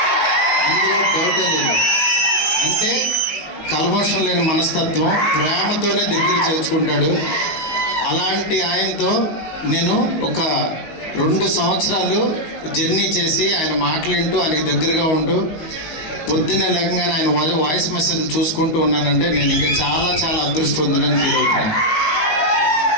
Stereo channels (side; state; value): right; late; 19 ms